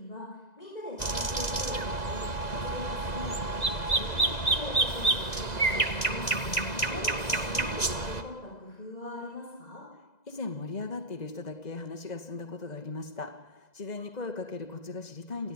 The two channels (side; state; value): right; late; 2.0 ms